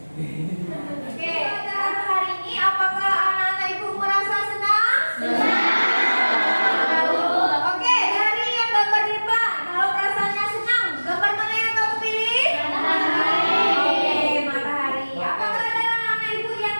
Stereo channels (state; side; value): inverted; both; correlation -1.00